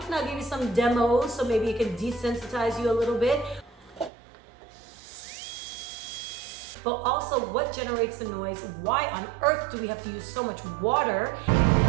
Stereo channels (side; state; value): left; drops out; at 4.1 s